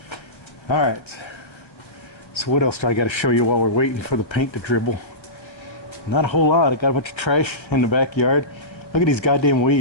All right. So what else do I got to show you while we're waiting for the paint to dribble? Not a whole lot. I got a bunch of trash in the backyard. Look at these goddamn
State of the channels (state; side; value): late; right; 1.3 ms